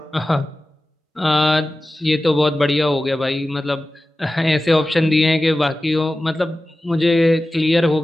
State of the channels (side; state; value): both; normal; correlation 0.95